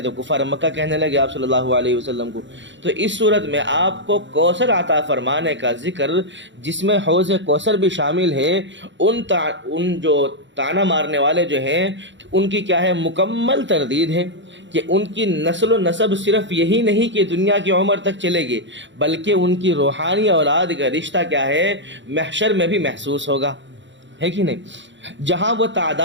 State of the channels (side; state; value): left; late; 0.54 ms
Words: تو کفار مکہ کہنے لگے آپ صلی اللہ علیہ وسلم کو۔ تو اس صورت میں آپ کو کوثر عطا فرمانے کا ذکر جس میں حوض کوثر بھی شامل ہے، ان جو طعنہ مارنے والے جو ہیں ان کی کیا ہے مکمل تردید ہے کہ ان کی نسل و نسب صرف یہی نہیں کہ دنیا کی عمر تک چلے گی، بلکہ ان کی روحانی اولاد کا رشتہ کیا ہے محشر میں بھی محسوس ہوگا، ہے کہ نہیں؟ جہاں وہ